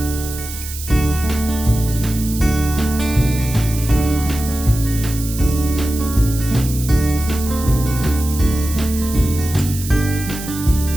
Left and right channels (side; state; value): right; noise; hiss, 10 dB below the sound